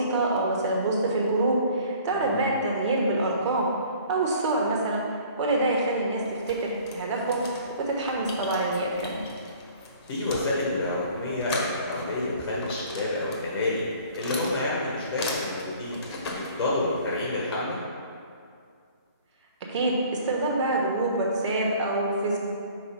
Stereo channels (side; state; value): both; inverted; correlation -0.51